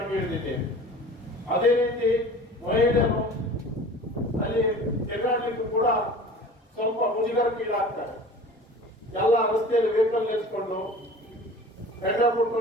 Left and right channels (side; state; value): both; normal; correlation 0.41